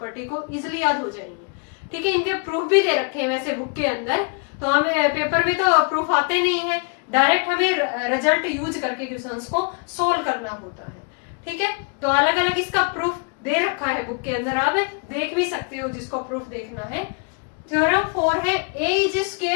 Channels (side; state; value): right; quieter; 36.7 dB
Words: को इजिली याद हो जाएंगे। ठीक है, इनके प्रूफ भी दे रखे हैं वैसे बुक के अंदर, तो हमें पेपर में तो प्रूफ आते नहीं है, डायरेक्ट हमें रिजल्ट यूज करके क्वेश्चंस को सोल्व करना होता है। ठीक है, तो अलग अलग इसका प्रूफ दे रखा है बुक के अंदर, आप देख भी सकते हो जिसको प्रूफ देखना है। थ्योरम 4 है A is